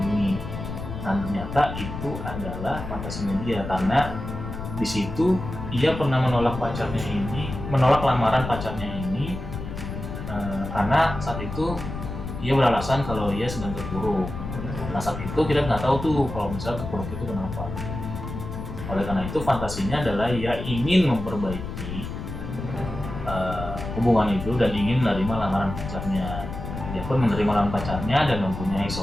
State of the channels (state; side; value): noise; left; rumble, 7 dB below the sound